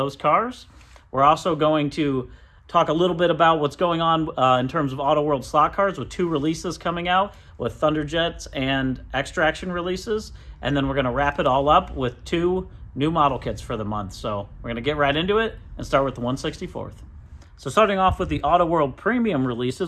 cars. We're also going to talk a little bit about what's going on in terms of Auto World slot cars with 2 releases coming out with Thunderjet and X-Traction releases. And then we're going to wrap it all up with 2 new model kits for the month. So we're going to get right into it and start with the 1/64th. So starting off with the Auto World Premium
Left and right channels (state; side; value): identical; both; correlation 1.00